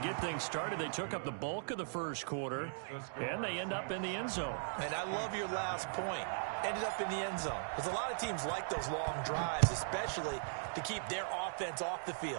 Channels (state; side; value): silent; left; digital silence